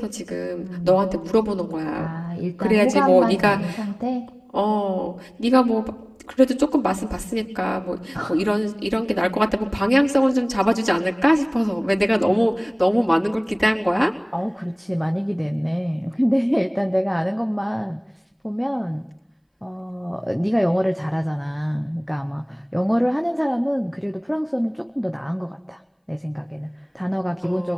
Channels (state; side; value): identical; both; correlation 1.00